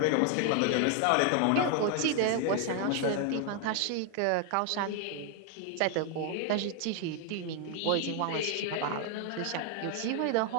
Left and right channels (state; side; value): different; both; correlation 0.00